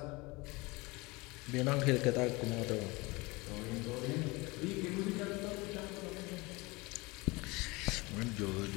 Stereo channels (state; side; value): quieter; right; 24.4 dB